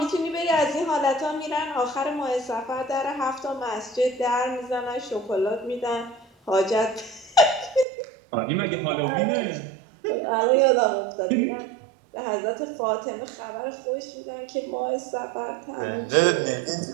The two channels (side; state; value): left; drops out; at 7.9 s